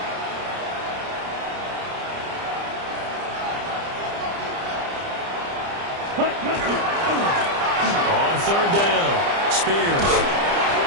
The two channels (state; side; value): late; left; 30 ms